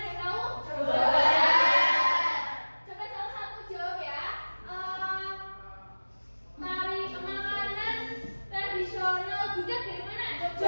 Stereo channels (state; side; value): inverted; both; correlation -1.00